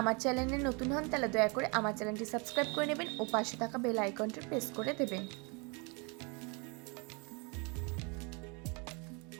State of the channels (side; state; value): left; quieter; 31.6 dB